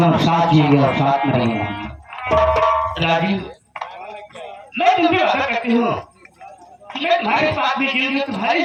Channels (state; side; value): identical; both; correlation 1.00